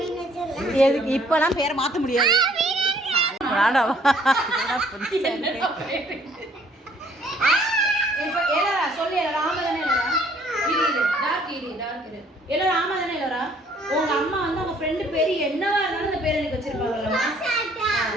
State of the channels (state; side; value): normal; both; correlation 0.61